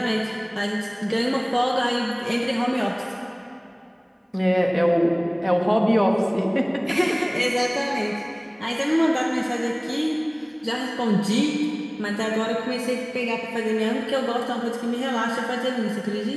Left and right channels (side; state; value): both; identical; correlation 1.00